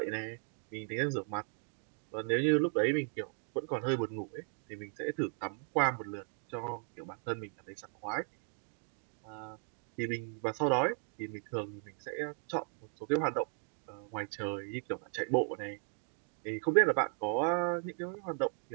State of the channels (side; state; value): left; silent; 53 dB below the other